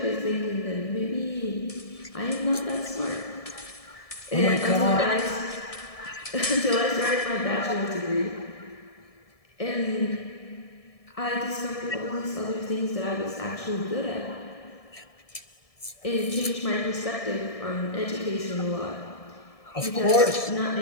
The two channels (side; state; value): right; late; 1.7 ms